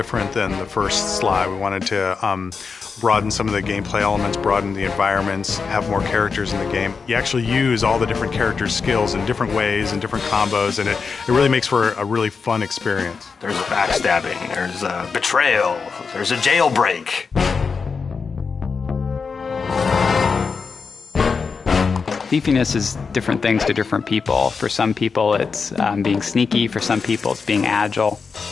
than the first Sly. We wanted to broaden some of the gameplay elements, broaden the environments, have more characters in the game. You actually use all the different characters' skills in different ways and different combos, and it really makes for a really fun experience. There's a backstabbing, there's a betrayal, there's a jailbreak. Thiefiness is different things to different people. For some people, it's being sneaky. For some people, it's being agile.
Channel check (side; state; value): right; quieter; 5.2 dB